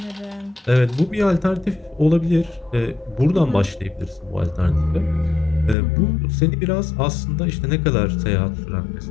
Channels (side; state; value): right; drops out; at 5.8 s